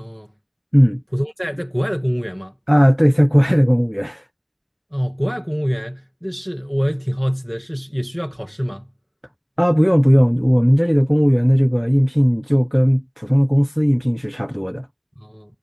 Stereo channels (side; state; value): both; identical; correlation 1.00